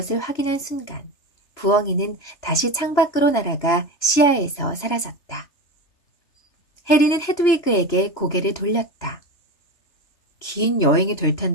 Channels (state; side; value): late; right; 3.0 ms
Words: 확인한 순간 부엉이는 다시 창밖으로 날아가 시야에서 사라졌다. 해리는 헤드위그에게 고개를 돌렸다. 긴 여행이 될